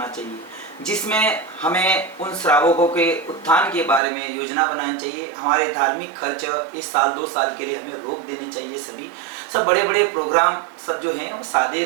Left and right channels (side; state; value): left; drops out; at 4.0 s